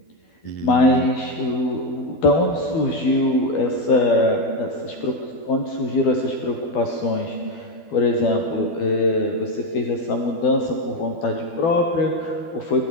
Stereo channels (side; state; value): right; late; 12 ms